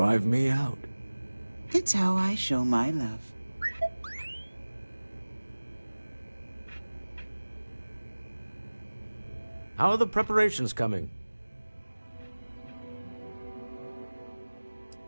me out. It's how I show my love. How are the preparations coming?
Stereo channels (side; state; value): both; inverted; correlation -1.00